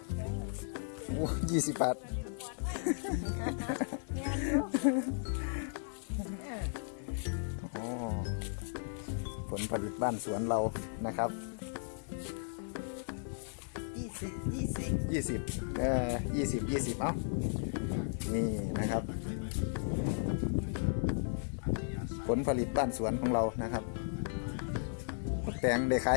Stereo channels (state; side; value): silent; right; 54 dB below the other